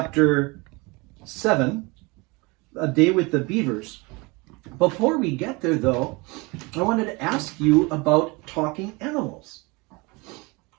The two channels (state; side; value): quieter; left; 26.2 dB